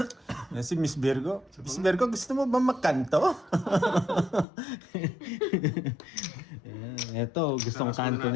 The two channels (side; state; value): right; drops out; at 4.5 s